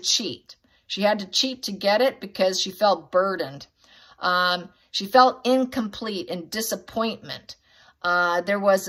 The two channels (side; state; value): both; identical; correlation 1.00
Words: She had to cheat to get it because she felt burdened. She felt incomplete and disappointment. There was